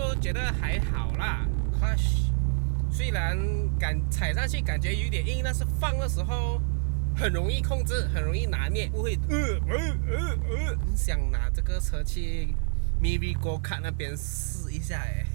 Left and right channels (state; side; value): silent; left; digital silence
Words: 觉得还好啦。Clutch 虽然踩上去感觉有点硬，但是放的时候很容易控制，很容易拿捏，不会很想拿这个车去 Maybe Go Kart 那边试一下哎。